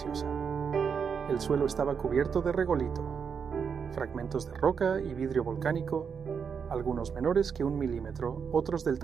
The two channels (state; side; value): quieter; left; 6.5 dB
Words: El suelo estaba cubierto de regolito, fragmentos de roca y vidrio volcánico, algunos menores que 1 milímetro, otros del